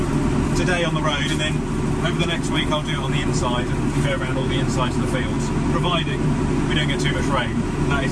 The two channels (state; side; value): identical; both; correlation 1.00